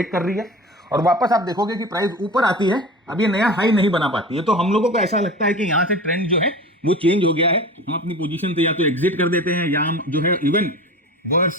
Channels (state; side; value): normal; both; correlation 0.34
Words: कर रही है और वापस आप देखोगे कि प्राइस ऊपर आती है, अब ये नया हाई नहीं बना पाती है। तो हम लोगों को ऐसा लगता है कि यहां से ट्रेंड जो है वो चेंज हो गया है, हम अपनी पोजीशन से या तो एग्जिट कर देते हैं या हम जो है इवन